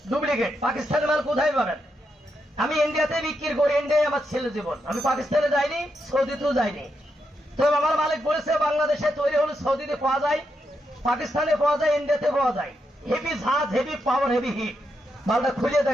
ডুপ্লিকেট। পাকিস্তানের মাল কোথায় পাবেন? আমি ইন্ডিয়াতে বিক্রি করি, ইন্ডিয়ায় আমার ছেলে জীবন। আমি পাকিস্তানে যাইনি, সৌদিতেও যাইনি। তো আমার মালিক বলেছে বাংলাদেশে তৈরি হলে সৌদিতে পাওয়া যায়, পাকিস্তানে পাওয়া যায়, ইন্ডিয়াতে পাওয়া যায়। হেভি ঝাঁজ, হেভি পাওয়ার, হেভি হিট। মালটা খুলে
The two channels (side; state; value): both; normal; correlation 0.83